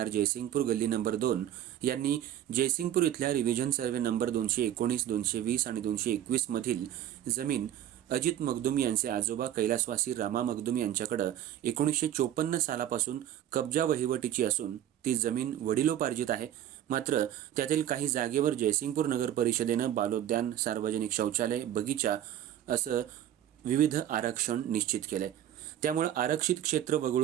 जयसिंगपूर गल्ली नंबर 2 यांनी जयसिंगपूर इथल्या रिव्हिजन सर्वे नंबर 219, 220 आणि 221 मधील जमीन अजित मगदूम यांचे आजोबा कैलासवासी रामा मगदूम यांच्याकडे 1954 सालापासून कब्जा वहिवटीची असून ती जमीन वडिलोपार्जित आहे। मात्र त्यातील काही जागेवर जयसिंगपूर नगर परिषदेनं बालोद्यान, सार्वजनिक शौचालय, बगीचा असं विविध आरक्षण निश्चित केलंय। त्यामुळे आरक्षित क्षेत्र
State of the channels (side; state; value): left; quieter; 11.4 dB